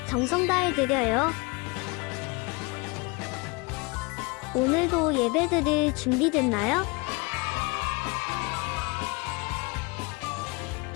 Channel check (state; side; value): quieter; right; 28.0 dB